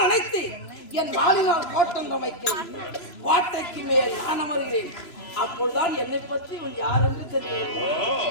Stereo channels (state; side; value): late; right; 3.0 ms